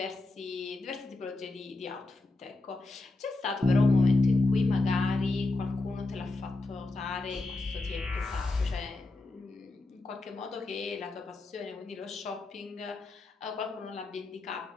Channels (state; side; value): quieter; right; 3.1 dB